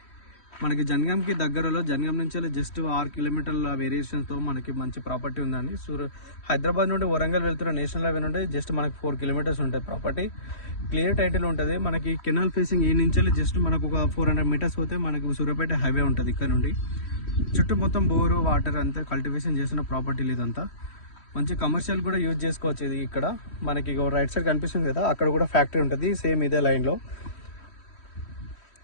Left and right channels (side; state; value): right; late; 3.1 ms